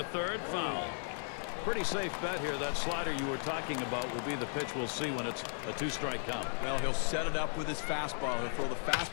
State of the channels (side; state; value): right; silent; 54 dB below the other